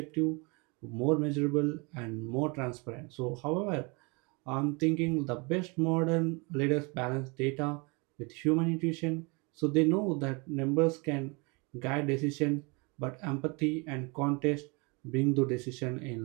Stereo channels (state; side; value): quieter; left; 29.7 dB